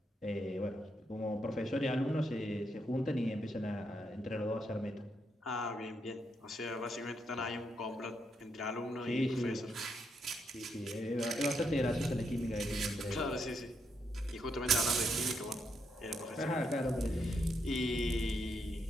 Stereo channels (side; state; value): both; normal; correlation 0.79